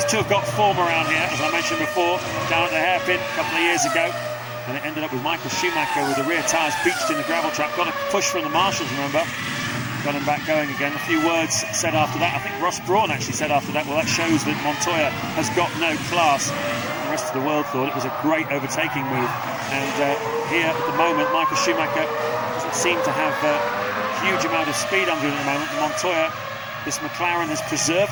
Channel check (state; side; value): identical; both; correlation 1.00